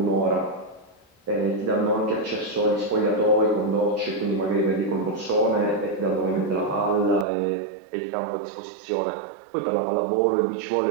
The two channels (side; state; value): left; drops out; at 7.2 s